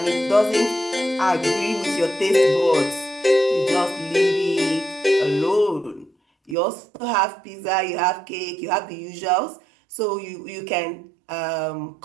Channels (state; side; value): drops out; left; at 6.6 s